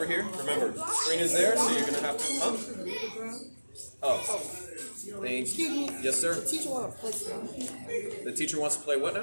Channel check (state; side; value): inverted; both; correlation -1.00